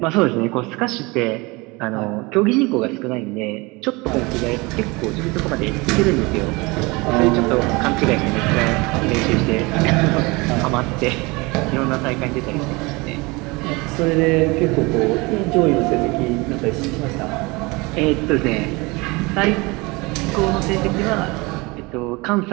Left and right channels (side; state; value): left; quieter; 25.0 dB